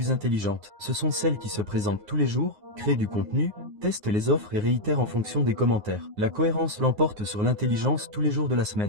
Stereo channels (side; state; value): left; late; 9.6 ms